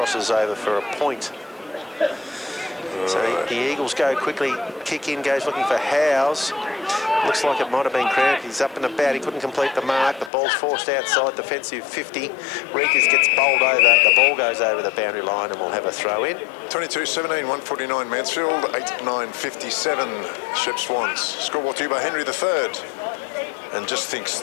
over for a point. So the Eagles go quickly. Kick in, goes looking for Howes. Looks like it might have been cramped. He's up and about. He couldn't complete the mark. The ball's forced outside. Defensive 50. Reekers gets bowled over. The ball goes over the boundary line and we'll have a throw in. 22-17, 149 Mansfield, 8-9-57 Shepp Swans. Score brought to you by Henry III. And just think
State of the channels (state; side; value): drops out; right; at 10.3 s